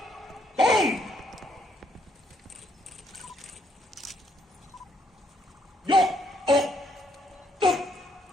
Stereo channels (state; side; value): normal; both; correlation 0.72